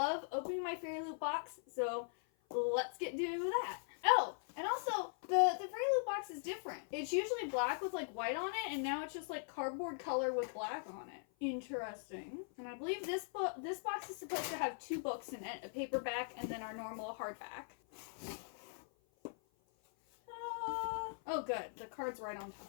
opening my FairyLoot box, so let's get to that. Oh, and also, the FairyLoot box is different. It's usually black with like white on it, and now it's just like cardboard color with black on it. Interesting. And I believe this box is supposed to have 2 books in it, a paperback and then our normal hardback. Oh good, the card's right on top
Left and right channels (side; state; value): right; silent; 51 dB below the other